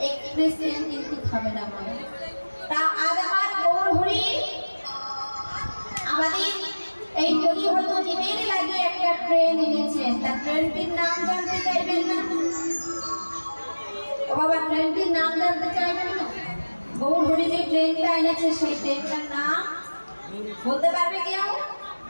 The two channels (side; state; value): both; inverted; correlation -1.00